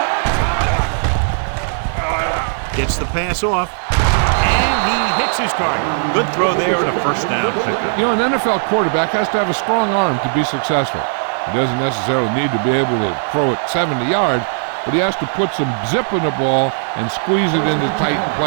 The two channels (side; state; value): left; silent; digital silence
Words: Gets the pass off, and he hits his target. Good throw there and a first down pickup. You know, an NFL quarterback has to have a strong arm to be successful. He doesn't necessarily need to be able to throw it 70 yards, but he has to put some zip in the ball and squeeze it into tight